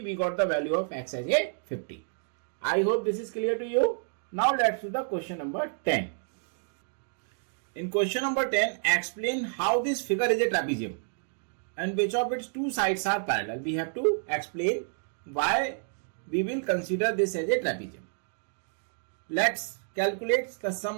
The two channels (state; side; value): silent; left; digital silence